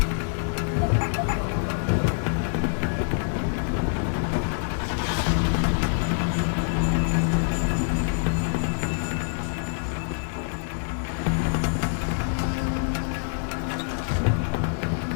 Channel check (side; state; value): right; silent; digital silence